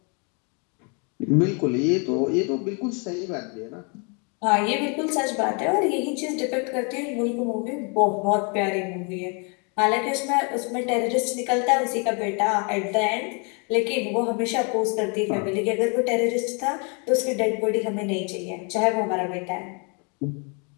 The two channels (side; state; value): right; quieter; 35.1 dB